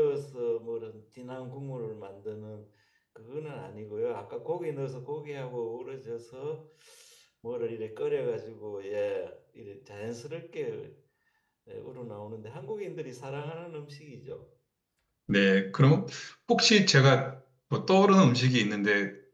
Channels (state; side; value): identical; both; correlation 1.00